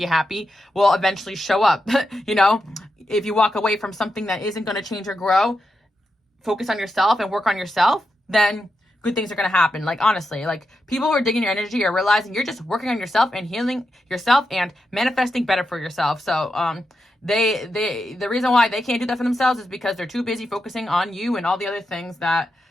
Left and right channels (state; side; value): normal; both; correlation 0.87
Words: happy will eventually show up, you know. If you walk away from something that isn't going to change or grow, focus on yourself and work on yourself, then good things are going to happen. Like, honestly, like, people who are digging your energy are realizing you're just working on yourself and healing yourself and manifesting better for yourself. So the reason why they can't do that for themselves is because they're too busy focusing on you and all the other things that